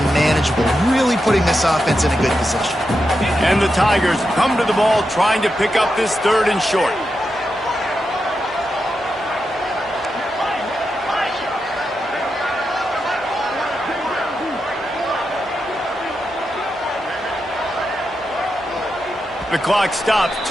manageable, really putting this offense in a good position. And the Tigers come to the ball trying to pick up this 3rd and short. The clock stops.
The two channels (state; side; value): normal; both; correlation 0.87